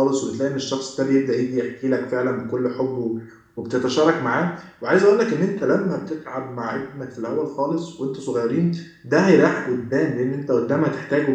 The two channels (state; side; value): identical; both; correlation 1.00